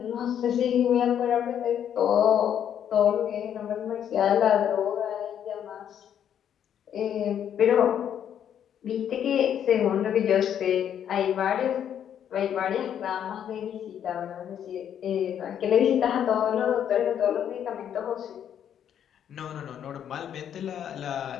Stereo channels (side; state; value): right; quieter; 9.4 dB